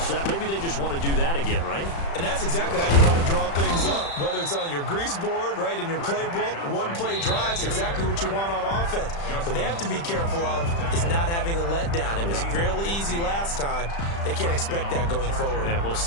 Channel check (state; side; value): late; right; 35 ms